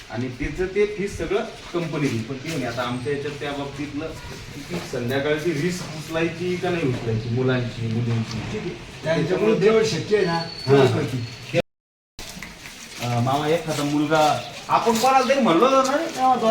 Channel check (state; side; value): identical; both; correlation 1.00